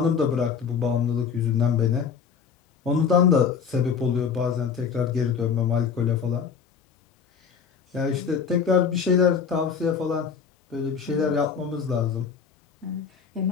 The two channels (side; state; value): right; quieter; 6.4 dB